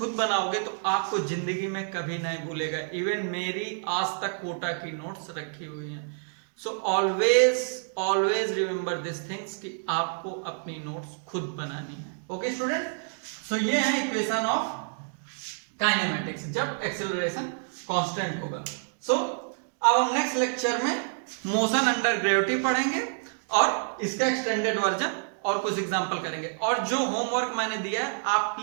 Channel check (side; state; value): left; silent; digital silence